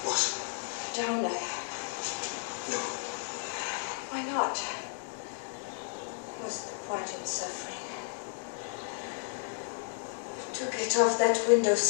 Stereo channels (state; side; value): silent; right; digital silence